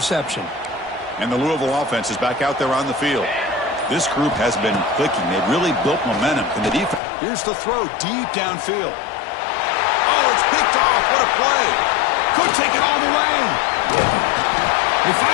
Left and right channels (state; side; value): drops out; right; at 7.0 s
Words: And the Louisville offense is back out there on the field. This group has been clicking. They've really built momentum in the defense. Here's the throw deep downfield. Oh, it's picked off. What a play. Could take it all the way. They